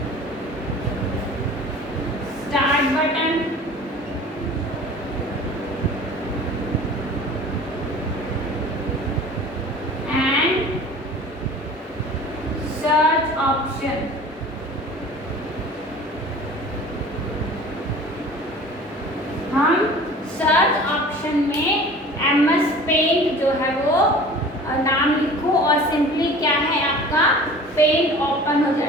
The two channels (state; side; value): normal; both; correlation 0.43